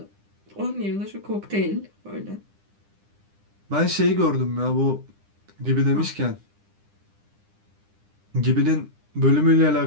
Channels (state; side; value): late; left; 9.9 ms